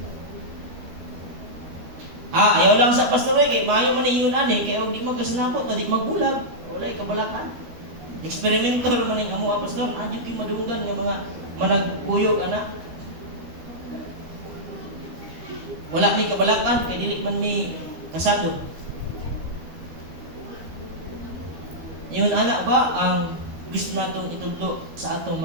Ayaw lang sa pastor kay maayo man ingon ani kay og di magkasinapot na di magbulag, walay kabalakan. Eksperimentor man ning amo pastor, adyo kay madunggan nga mga managkuyog ana. Wala ni kabalakan kay dili man mi kasado. Yun ana ba ang gusto natong itudlo sa atong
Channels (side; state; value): left; late; 13 ms